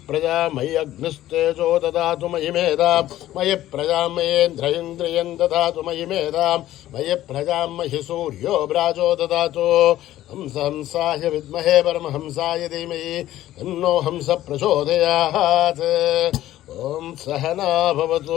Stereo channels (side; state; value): right; quieter; 14.0 dB